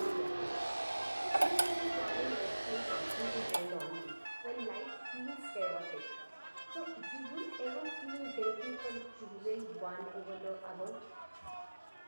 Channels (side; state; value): both; inverted; correlation -1.00